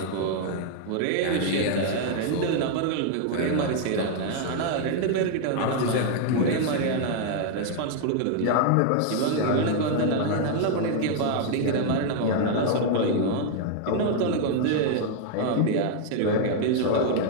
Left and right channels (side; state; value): both; different; correlation 0.00